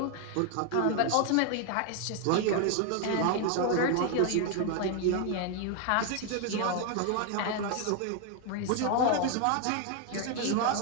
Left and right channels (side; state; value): both; different; correlation 0.01